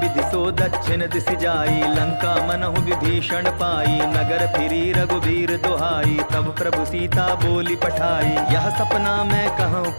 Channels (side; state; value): both; inverted; correlation -1.00